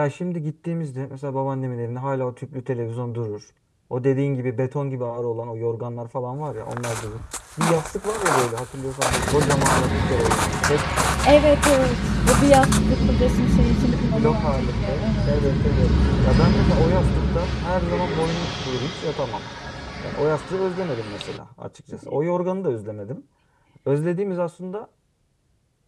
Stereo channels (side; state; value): both; identical; correlation 1.00